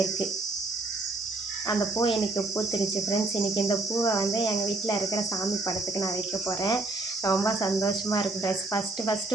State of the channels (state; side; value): quieter; left; 3.1 dB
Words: அந்த பூ இன்றைக்கி பூத்துருச்சு ஃப்ரெண்ட்ஸ். இன்றைக்கி இந்த பூவை வந்து எங்கள் வீட்டில் இருக்கிற சாமி படத்துக்கு நான் வைக்க போகிறேன். ரொம்ப சந்தோஷமாக இருக்குது ஃப்ரெண்ட்ஸ்.